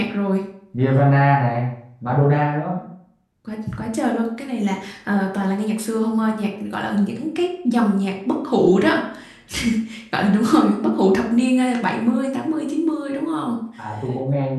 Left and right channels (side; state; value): both; identical; correlation 1.00